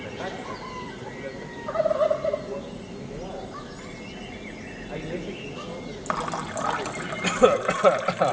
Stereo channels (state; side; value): identical; both; correlation 1.00